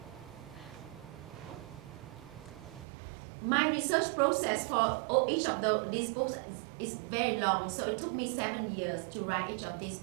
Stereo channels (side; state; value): left; drops out; at 2.9 s